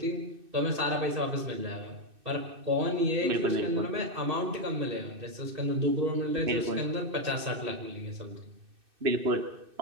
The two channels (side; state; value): left; late; 2.6 ms